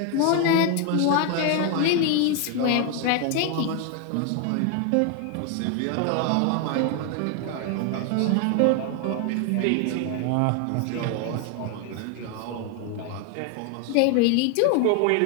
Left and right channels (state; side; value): different; both; correlation 0.01